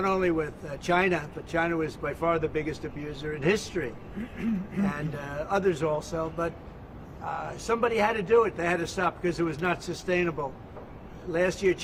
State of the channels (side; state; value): both; identical; correlation 1.00